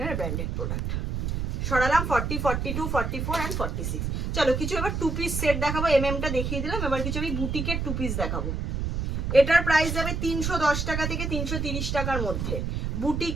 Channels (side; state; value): right; noise; rumble, 2 dB below the sound